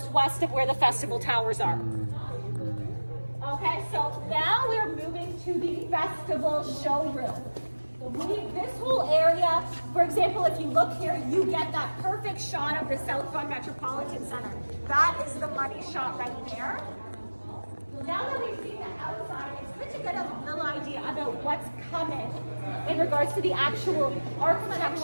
west of where the Festival Towers are. Okay, so now we're moving to the Festival showroom. This whole area, for example, if you look here, you get that perfect shot of the South Vaughan Metropolitan Center. That is the money shot right there. Now that we've seen the outside, it's good to get a little idea about what's coming in regards to the actual architecture. Let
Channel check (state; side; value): inverted; both; correlation -1.00